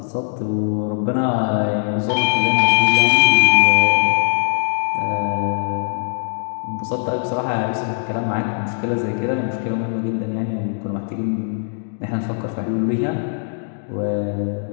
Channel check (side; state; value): right; silent; 66 dB below the other